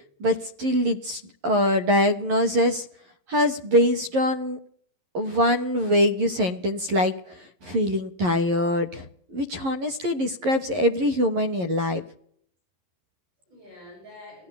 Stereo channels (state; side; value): late; left; 11 ms